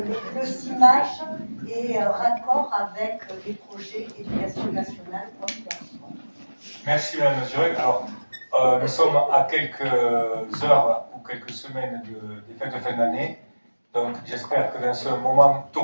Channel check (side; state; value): both; inverted; correlation -1.00